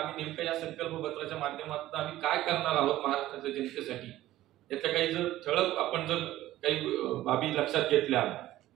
नेमकं या संकल्पपत्राच्या माध्यमातून आम्ही काय करणार आहोत महाराष्ट्राच्या जनतेसाठी, याच्या काही जर ठळक आपण जर काही बाबी लक्षात घेतल्या,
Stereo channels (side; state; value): left; quieter; 15.0 dB